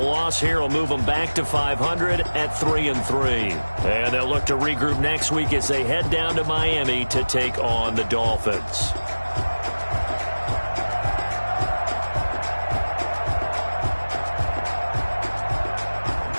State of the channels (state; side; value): inverted; both; correlation -1.00